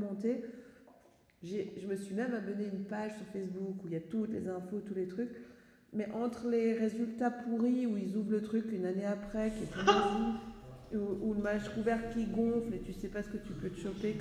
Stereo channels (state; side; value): identical; both; correlation 1.00